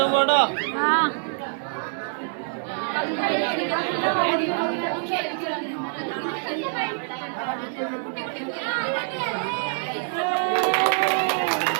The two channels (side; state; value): left; silent; digital silence